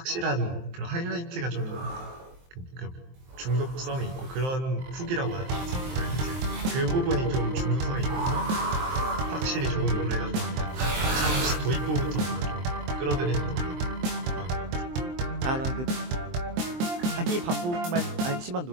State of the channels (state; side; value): late; left; 23 ms